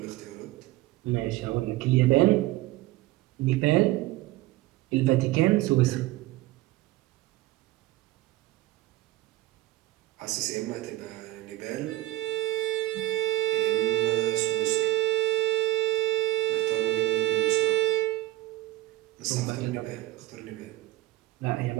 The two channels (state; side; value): quieter; left; 17.8 dB